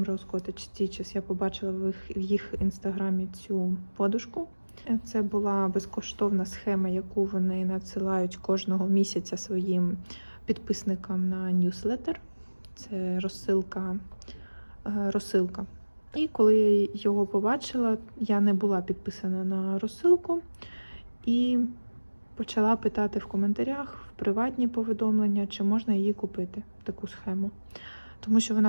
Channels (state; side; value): inverted; both; correlation -1.00